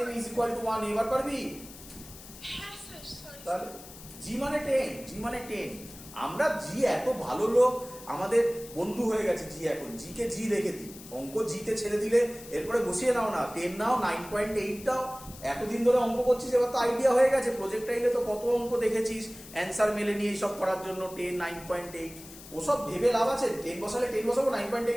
= 1a। এবার পারবি? হ্যাঁ স্যার, সরি। তাহলে জি মানে 10, জি মানে 10। আমরা জি এত ভালো লোক, আমাদের বন্ধু হয়ে গেছে জি। এখন জি কে জি রেখে দিই, অঙ্ক জিতে ছেড়ে দিলে এরপরে বসিয়ে নাও না, 10 নাও, 9.8 দাও। এতদিন ধরে অঙ্ক করছিস, এবার তো আইডিয়া হয়ে গেছে। প্রজেক্টাইলে তো কত অঙ্ক দেখেছিস অ্যান্সার মেলে নিয়ে এইসব করার জন্য 10, 9.8। ওসব ভেবে লাভ আছে? 10 বসালে 10 বসাবো,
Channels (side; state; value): left; noise; hiss, 17 dB below the sound